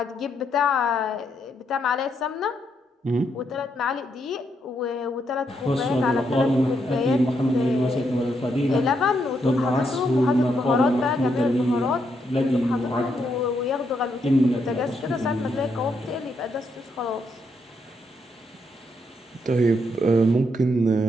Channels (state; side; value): normal; both; correlation 0.78